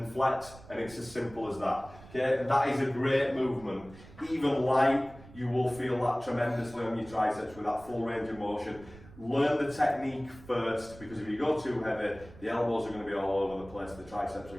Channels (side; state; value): right; noise; rumble, 20 dB below the sound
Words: flex, and it's as simple as that. Okay, and that is a great movement. Even light, you will feel that tremendously on your triceps with that full range of motion. Learn the technique first, because if you go too heavy, the elbows are going to be all over the place, the triceps are